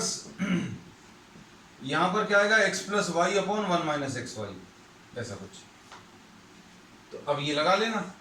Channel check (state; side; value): identical; both; correlation 1.00